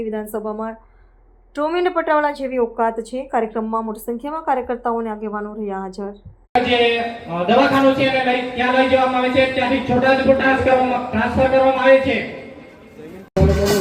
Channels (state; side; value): identical; both; correlation 1.00